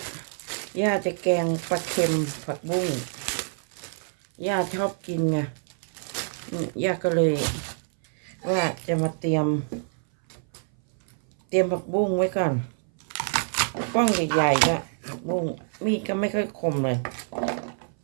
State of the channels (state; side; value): silent; left; 59 dB below the other